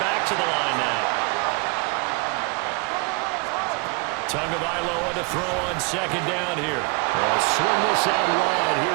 to the line now. Tagovailoa to throw on 2nd down here. They'll swing this out wide.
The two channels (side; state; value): left; quieter; 31.3 dB